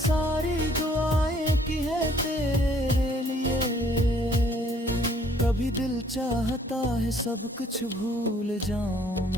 दुआएं की हैं तेरे लिए, कभी दिल चाहता है सब कुछ भूल जाऊं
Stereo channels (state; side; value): normal; both; correlation 0.61